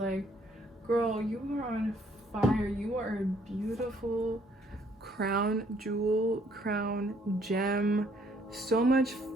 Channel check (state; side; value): normal; both; correlation 0.65